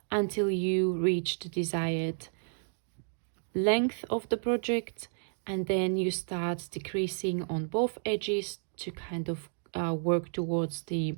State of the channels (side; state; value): left; silent; digital silence